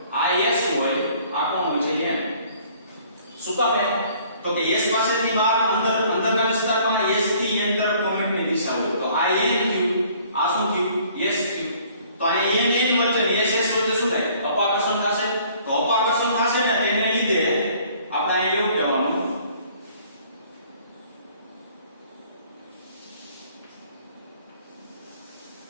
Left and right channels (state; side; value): inverted; both; correlation -0.57